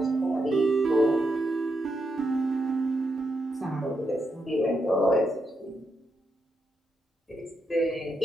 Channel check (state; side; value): normal; both; correlation 0.83